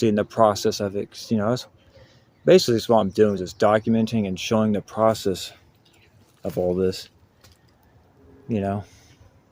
the process of it. You know, that's basically what I'm doing, is just documenting and showing the process of all this, you know.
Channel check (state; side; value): identical; both; correlation 1.00